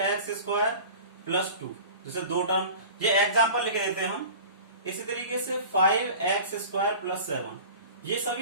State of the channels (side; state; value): both; inverted; correlation -0.38